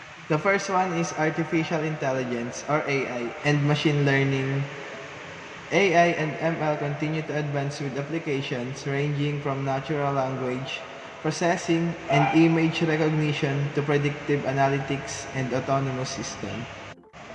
The first one is artificial intelligence or AI and machine learning. AI and ML continue to advance with applications ranging from natural language processing and image recognition to predictive analytics and autonomous systems.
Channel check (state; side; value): identical; both; correlation 1.00